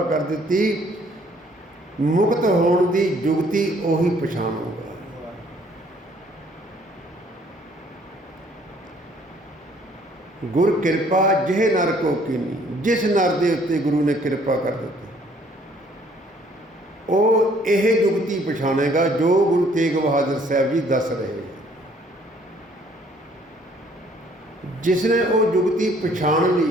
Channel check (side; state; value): both; normal; correlation 0.61